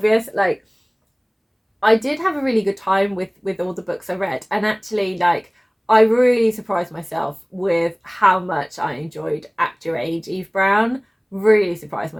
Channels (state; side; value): identical; both; correlation 1.00